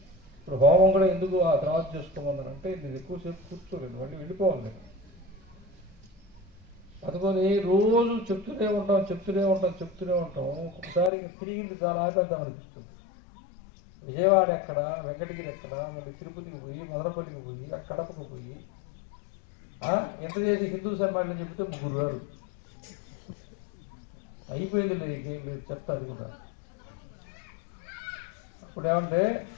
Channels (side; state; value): right; drops out; at 11.1 s